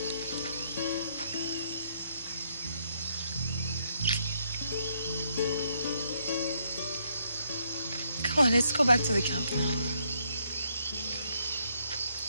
Come on, let's go back to the camp now.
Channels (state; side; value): inverted; both; correlation -0.73